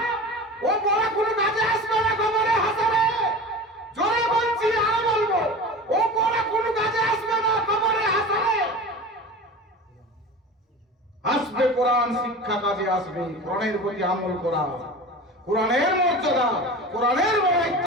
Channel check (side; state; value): both; normal; correlation 0.34